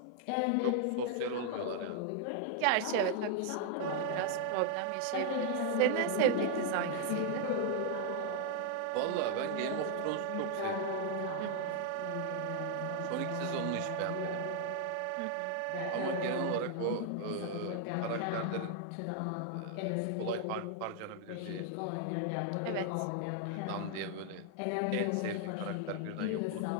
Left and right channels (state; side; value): different; both; correlation 0.00